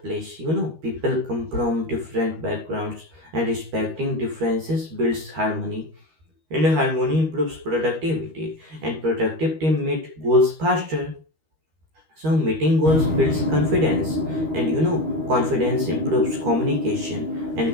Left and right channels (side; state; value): left; late; 13 ms